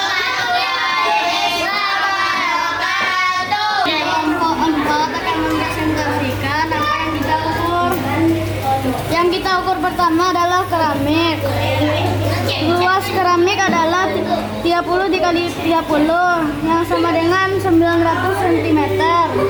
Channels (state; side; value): identical; both; correlation 1.00